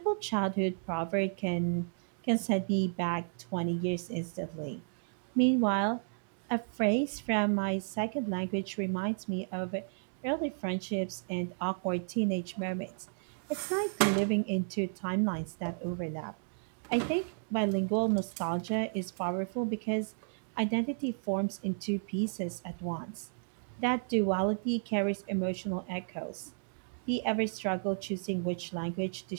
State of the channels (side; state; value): left; silent; digital silence